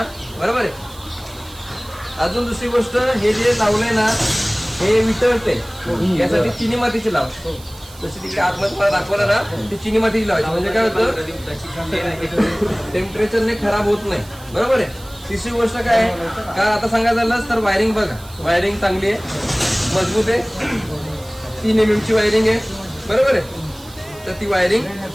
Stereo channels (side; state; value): right; noise; hiss, 21 dB below the sound